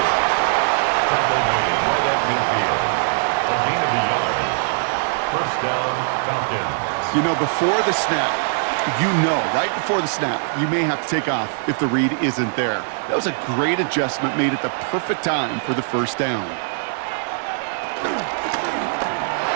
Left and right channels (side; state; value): left; silent; digital silence